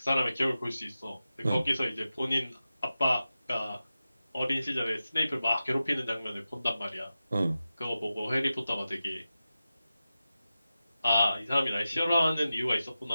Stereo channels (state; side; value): inverted; both; correlation -0.93